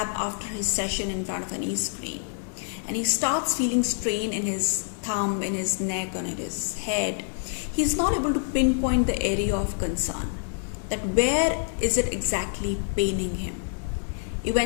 after his session in front of an e-screen, and he starts feeling strain in his thumb, in his neck, and in his head, he's not able to pinpoint the area of concern. That where is it exactly paining him?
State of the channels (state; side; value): silent; right; digital silence